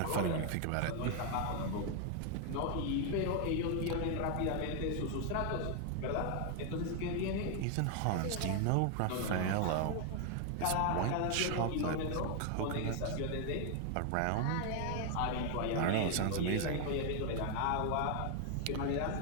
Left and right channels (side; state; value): both; different; correlation 0.00